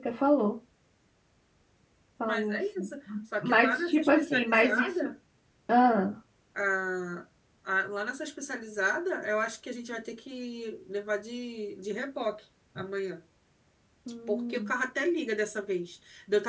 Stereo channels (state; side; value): identical; both; correlation 1.00